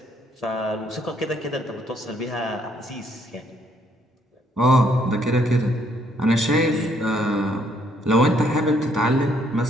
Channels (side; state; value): both; normal; correlation 0.69